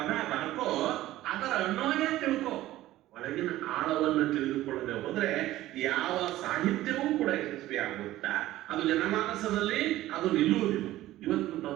ಅದರ ಅನ್ವಯ ತಿಳ್ಕೊ. ಒಳಗಿನ ಆಳವನ್ನು ತಿಳಿದುಕೊಳ್ಳದೆ ಹೋದ್ರೆ ಯಾವ ಸಾಹಿತ್ಯವೂ ಕೂಡ ಯಶಸ್ವಿ ಆಗುತ್ತಾ, ಅದು ಜನಮಾನಸದಲ್ಲಿ ಅದು ನಿಲ್ಲುವುದಿಲ್ಲ. ಇವತ್ತು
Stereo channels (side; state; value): left; quieter; 15.4 dB